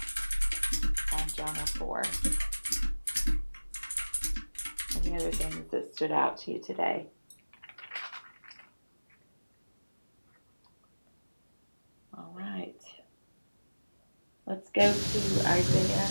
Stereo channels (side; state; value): both; inverted; correlation -1.00